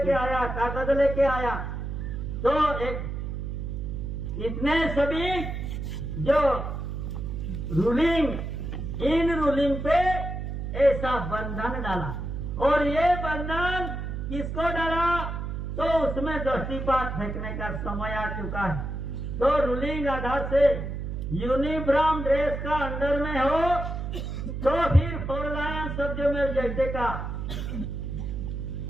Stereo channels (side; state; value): right; noise; hum, 4 dB below the sound